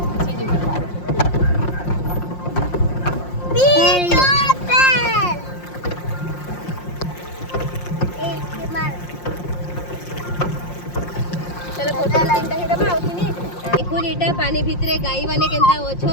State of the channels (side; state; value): right; late; 5.6 ms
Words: देखो एटा पानी भितरे गाई माने केनता ओछन